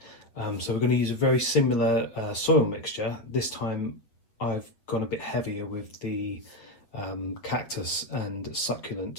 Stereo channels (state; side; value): late; right; 8.1 ms